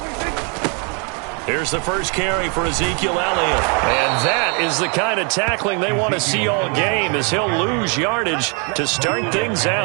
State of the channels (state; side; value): quieter; left; 36.1 dB